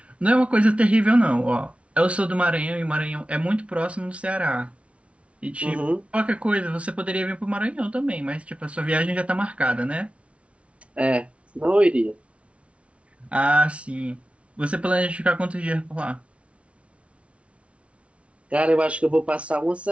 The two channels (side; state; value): left; late; 0.062 ms